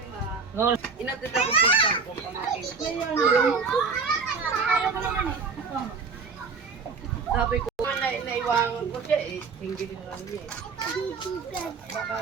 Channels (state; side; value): quieter; left; 5.0 dB